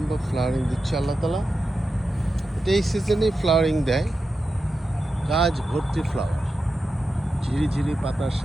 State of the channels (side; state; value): both; normal; correlation 0.90